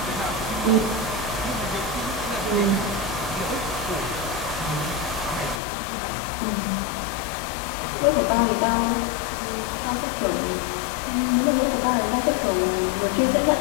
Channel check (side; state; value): right; drops out; at 5.6 s